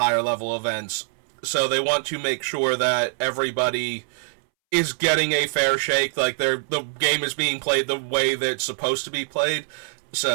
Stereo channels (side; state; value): left; silent; 63 dB below the other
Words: level events. So they want to make sure that everybody is getting a fair shake, like the game is being played the way that it's supposed to be played.